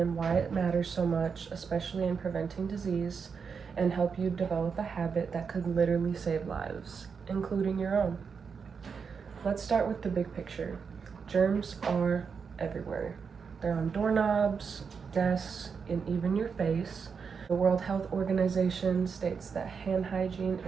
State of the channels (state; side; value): quieter; left; 5.9 dB